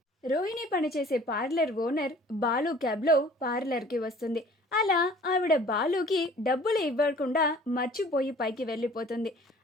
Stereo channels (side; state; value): both; normal; correlation 0.51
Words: రోహిణి పనిచేసే పార్లర్ ఓనర్ బాలు క్యాబ్లో పార్లర్కి వస్తుంది. అలా ఆవిడ బాలుకి డబ్బులు ఇవ్వకుండా మర్చిపోయి పైకి వెళ్ళిపోతుంది.